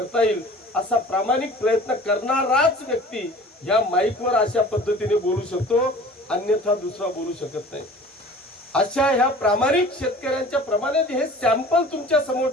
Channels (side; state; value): both; normal; correlation 0.44